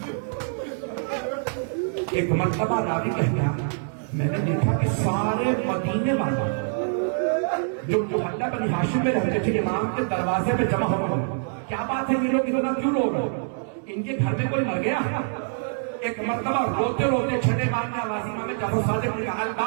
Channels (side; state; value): left; silent; digital silence